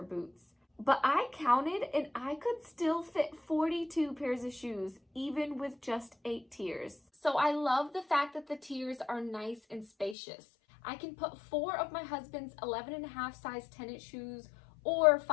boots. But I counted and I could still fit 42 pairs of shoes even with just 8 tiers. So I love the fact that the tiers are nice and spacious. I can put 4 of my husband's 11.5 size tennis shoes or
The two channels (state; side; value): drops out; right; at 10.2 s